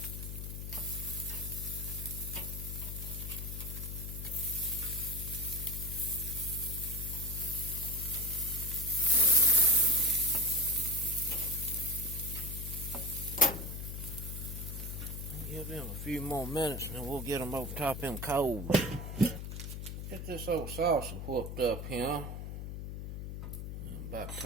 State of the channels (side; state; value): left; noise; hum, 6 dB below the sound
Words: Give them a few more minutes and then we'll get them over top of them coals. Get this old salsa whooped up here. About a